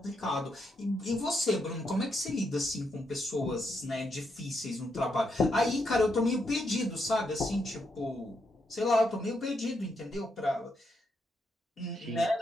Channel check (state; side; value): normal; both; correlation 0.80